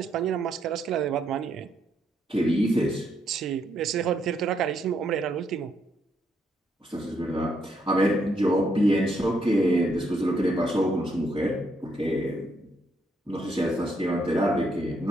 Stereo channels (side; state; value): both; normal; correlation 0.75